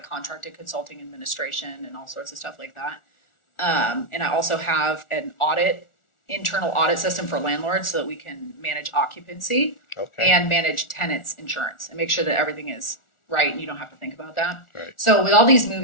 contracted consulting administration and all sorts of stuff like that. And I also have an internal audit system for landlords so that we can manage occupancy and manage tenants insurance and make sure that everything is right and you don't have to think about that. Right. So with all these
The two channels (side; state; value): right; late; 1.4 ms